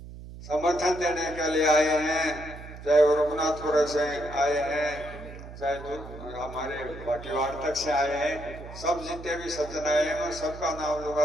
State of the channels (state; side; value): noise; right; hum, 14 dB below the sound